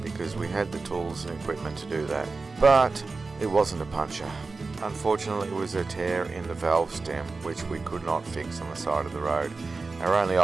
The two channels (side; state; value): left; quieter; 4.0 dB